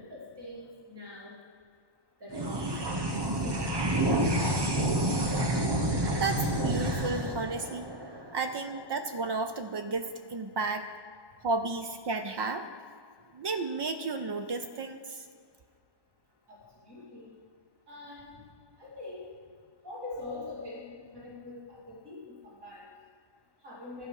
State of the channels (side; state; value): left; late; 1.1 ms